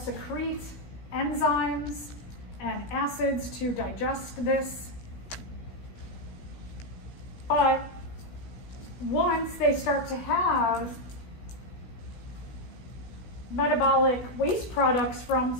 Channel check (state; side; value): late; right; 16 ms